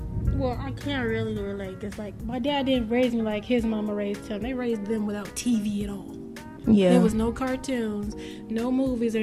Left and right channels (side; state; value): both; identical; correlation 1.00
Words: Well, I can't really relate, because like my dad didn't raise me like his mama raised him. They raised them without TV at all. Yeah. There was no cartoons, no movies or